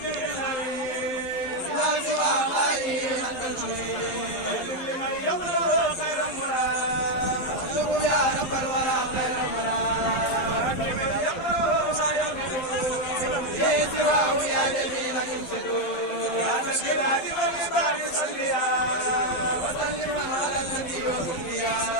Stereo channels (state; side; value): late; right; 11 ms